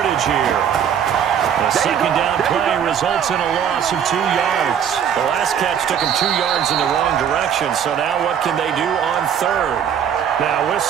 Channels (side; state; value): left; quieter; 8.4 dB